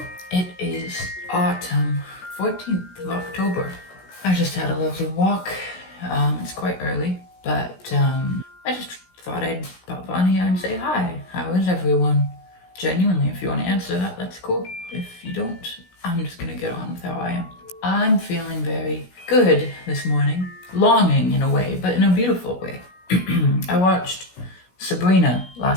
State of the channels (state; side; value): late; right; 16 ms